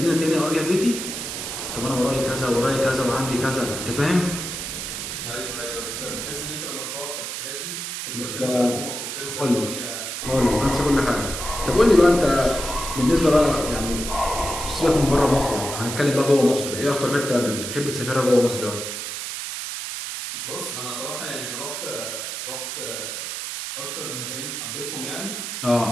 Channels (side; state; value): right; noise; hiss, 5 dB below the sound